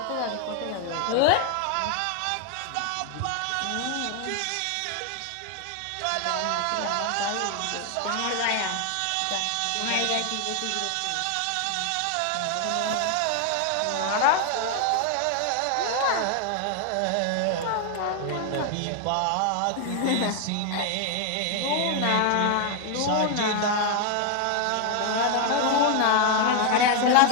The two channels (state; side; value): different; both; correlation 0.00